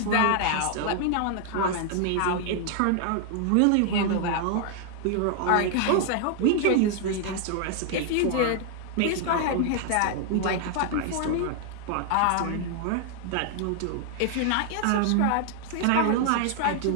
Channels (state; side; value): different; both; correlation 0.00